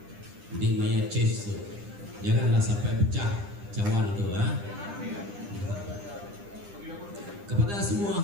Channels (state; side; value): late; left; 9.9 ms